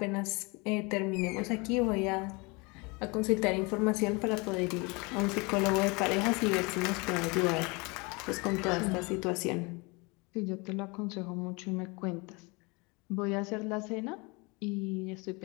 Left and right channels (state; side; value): quieter; right; 27.8 dB